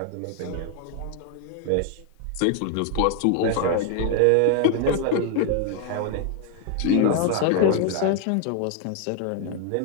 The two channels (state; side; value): different; both; correlation 0.00